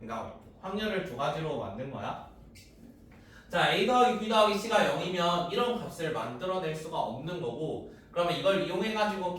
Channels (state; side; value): identical; both; correlation 1.00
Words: 확률을 두 가지로 만든 거야. 자, A 더하기 B 더하기 C가 0이면 이런 값을 만들어낼 수가 없는 거고, 그러면 이걸 이용해가지고